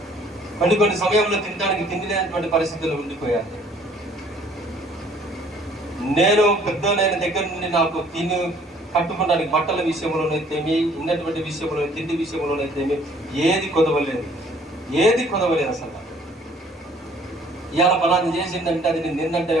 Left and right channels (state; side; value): normal; both; correlation 0.58